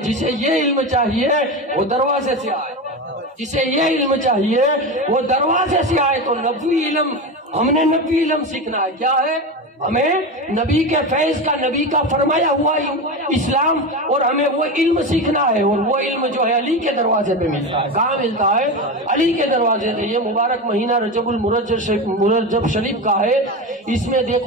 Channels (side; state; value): both; normal; correlation 0.21